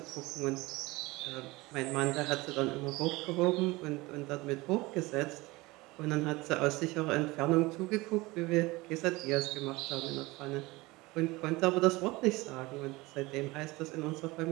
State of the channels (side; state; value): left; quieter; 21.7 dB